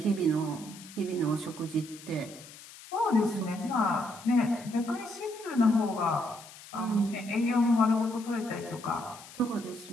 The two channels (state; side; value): noise; left; hiss, 18 dB below the sound